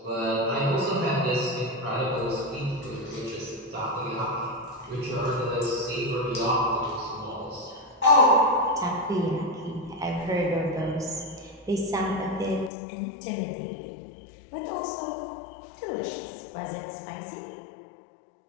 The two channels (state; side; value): drops out; right; at 12.7 s